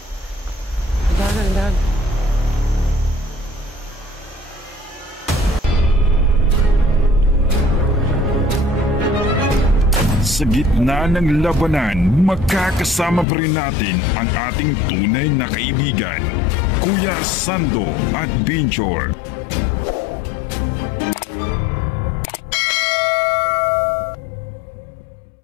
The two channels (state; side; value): drops out; right; at 13.2 s